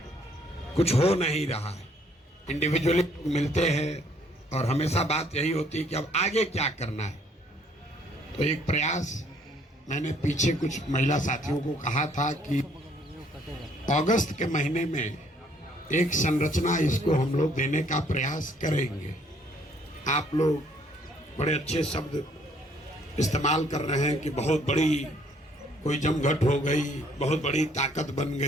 कुछ हो नहीं रहा है। इंडिविजुअली मिलते हैं और हमेशा बात यही होती है कि अब आगे क्या करना है। तो एक प्रयास मैंने पीछे कुछ महिला साथियों को कहा था कि अगस्त के महीने में एक संरचना इसको हम लोग देने का प्रयास करेंगे। आप लोग बड़े अच्छे शब्द इस्तेमाल कर रहे हैं कि बहुत बड़ी कोई जमघट हो गई, बहुत बड़ी ताकत बन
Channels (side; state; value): both; normal; correlation 0.64